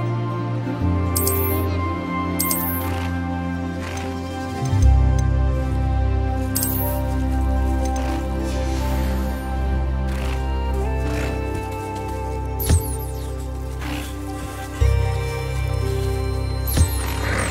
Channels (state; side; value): identical; both; correlation 1.00